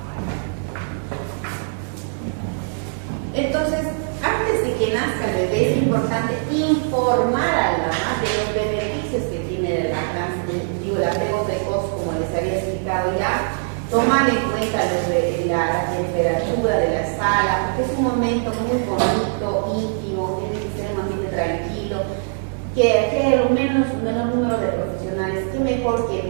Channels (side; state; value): left; silent; digital silence